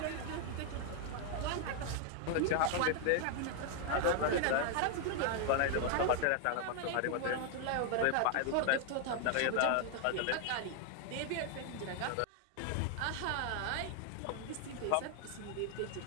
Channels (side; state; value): both; different; correlation 0.00